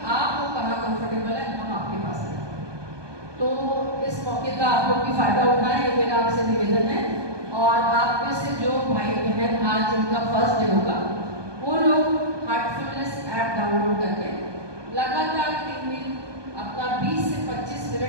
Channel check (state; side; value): late; left; 1.2 ms